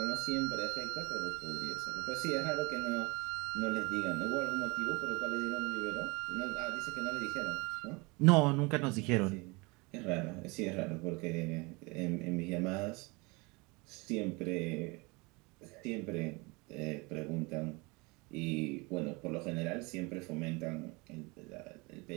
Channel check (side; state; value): left; quieter; 26.9 dB